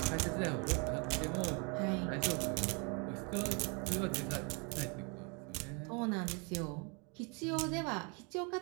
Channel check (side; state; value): left; quieter; 33.6 dB